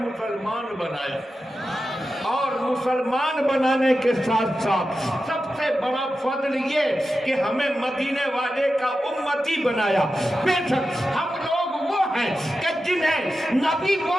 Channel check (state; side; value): normal; both; correlation 0.91